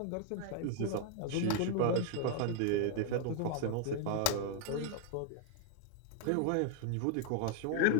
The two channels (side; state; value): both; different; correlation 0.00